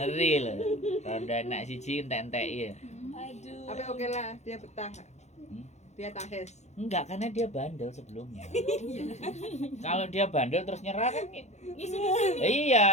lho. Rondo anak siji entek-entek ya. Aduh. Tapi oke lah, dia betah. Hmm? Dia tahes. Enggak, karena dia bandel sebelumnya. Kalau dia bandel terus nyerah kan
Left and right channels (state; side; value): late; right; 0.33 ms